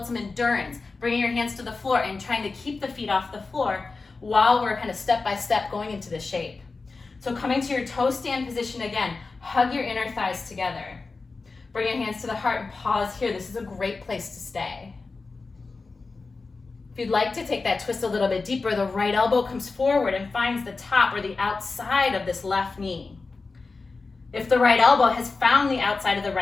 some endurance, bringing your hands to the floor and trying to keep the feet off the floor while we're kind of step by step going into the shape. So coming to your toe stand position again, hug your inner thighs together. Bring your hands to the heart and pause here. This is a great place to stay. If you'd like to take that twist a little bit deeper, the right elbow comes forward and finds the top or the outside of this left knee. If the right elbow has found the outside of the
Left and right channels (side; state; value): right; quieter; 4.0 dB